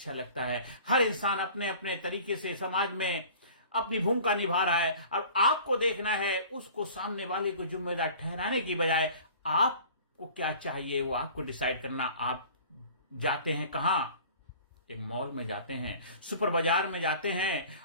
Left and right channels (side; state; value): both; inverted; correlation -0.45